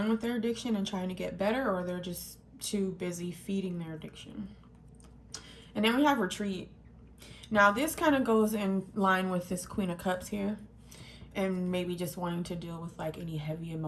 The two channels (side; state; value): both; identical; correlation 1.00